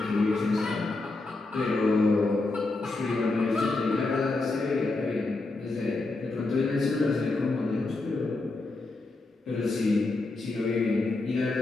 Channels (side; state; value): right; quieter; 3.3 dB